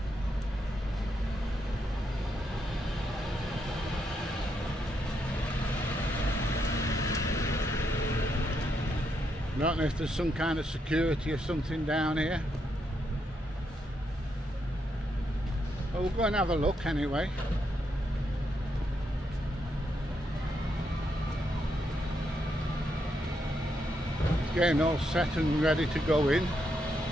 I don't know if there's some kind of security or something down here. But we'll go and have a look anyway. Getting all set and ready to go in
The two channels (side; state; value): both; normal; correlation 0.79